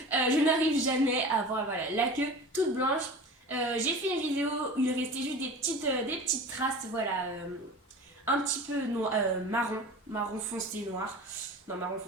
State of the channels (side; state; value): both; normal; correlation 0.36